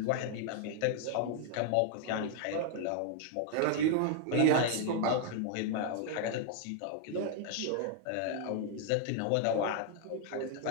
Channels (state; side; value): different; both; correlation 0.00